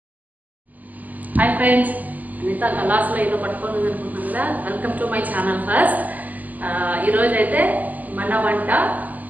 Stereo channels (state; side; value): late; left; 0.080 ms